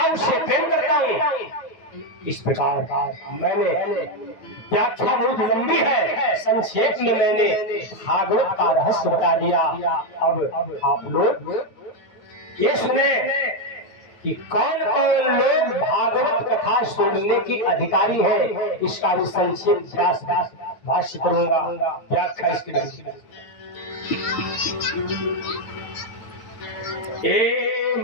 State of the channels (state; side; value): late; right; 9.2 ms